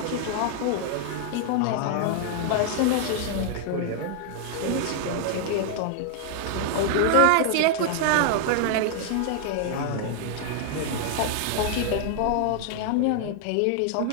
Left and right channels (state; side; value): different; both; correlation 0.00